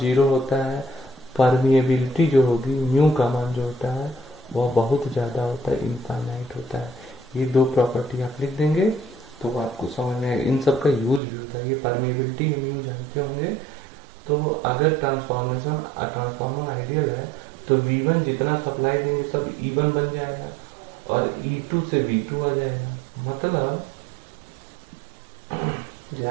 होता है। परमिएबिलिटी जो होगी, म्यू का मान जो होता है वह बहुत ज्यादा होता है, इनफाइनाइट होता है। ये दो प्रॉपर्टी आप लिख देंगे तो आपको समझ में आएगा। इन सब का यूज भी होता है। ये परमिएबिलिटी हम यूज जानते होंगे। तो अगर ट्रांसफार्मर आइडियल है तो V1 जितना सप्लाई देंगे सब E1 बन जाएगा और E2 से V2 आ जाएगा। मतलब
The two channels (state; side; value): drops out; left; at 11.2 s